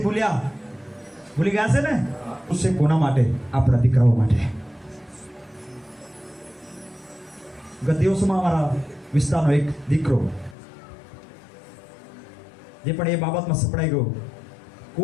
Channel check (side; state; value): right; drops out; at 10.6 s